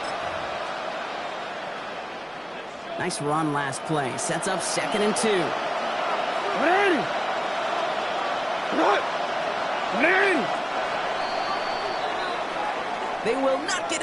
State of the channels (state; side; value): identical; both; correlation 1.00